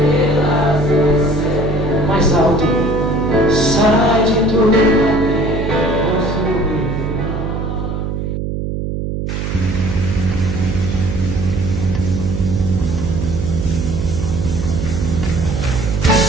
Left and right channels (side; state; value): right; noise; hum, 3 dB below the sound